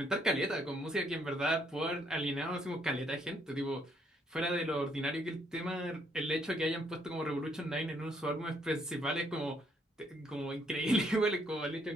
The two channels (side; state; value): both; normal; correlation 0.69